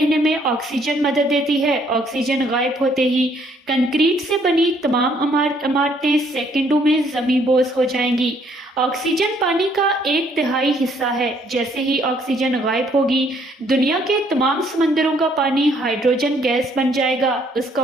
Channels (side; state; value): both; normal; correlation 0.66